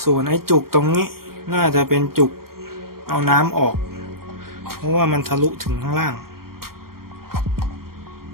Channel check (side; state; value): left; late; 0.93 ms